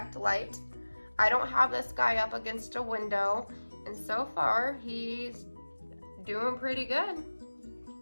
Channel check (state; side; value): inverted; both; correlation -1.00